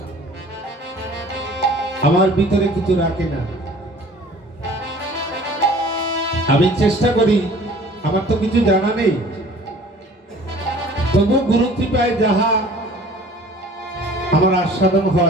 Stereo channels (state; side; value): normal; both; correlation 0.49